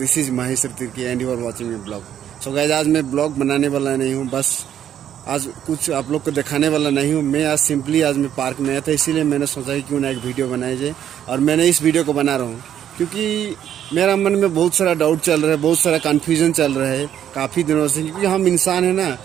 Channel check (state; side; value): quieter; left; 10.1 dB